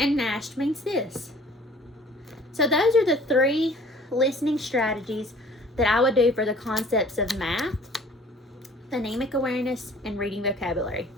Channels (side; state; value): both; normal; correlation 0.51